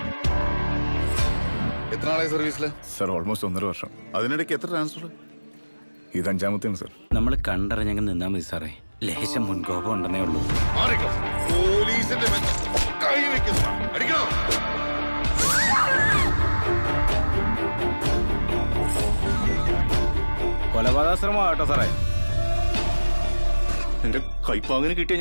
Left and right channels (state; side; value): inverted; both; correlation -1.00